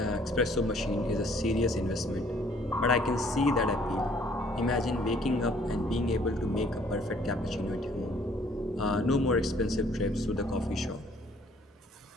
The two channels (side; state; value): both; normal; correlation 0.60